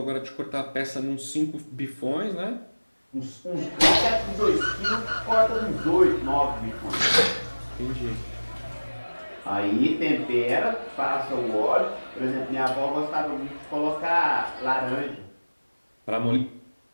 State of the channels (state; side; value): inverted; both; correlation -1.00